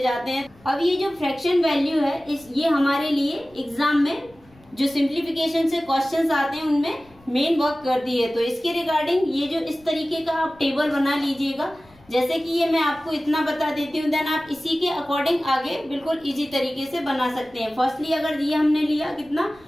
हैं। अब ये जो फ्रैक्शन वैल्यू है ये हमारे लिए एग्जाम में जो सिंप्लीफिकेशन से क्वेश्चंस आते हैं उनमें मेन वर्क करती है। तो इसके रिगार्डिंग ये जो इस तरीके का आप टेबल बना लीजिएगा, जैसे कि ये मैं आपको इतना बता देती हूँ, देन आप इसी के अकॉर्डिंग आगे बिल्कुल इजी तरीके से बना सकते हैं। फर्स्टली अगर ये हमने लिया कितना,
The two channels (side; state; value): left; noise; rumble, 28 dB below the sound